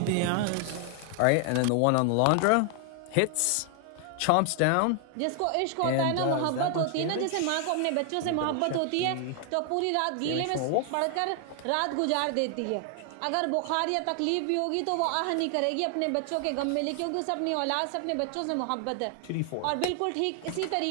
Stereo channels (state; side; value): different; both; correlation 0.00